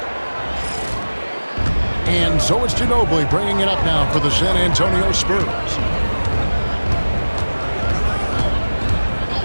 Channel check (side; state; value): both; inverted; correlation -1.00